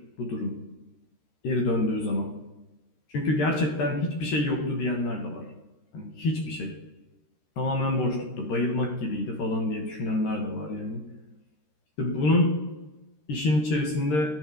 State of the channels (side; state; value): right; late; 13 ms